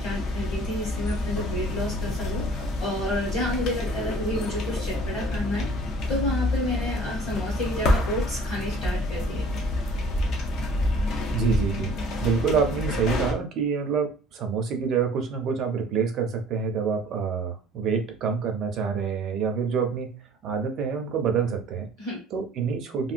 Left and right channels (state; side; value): normal; both; correlation 0.51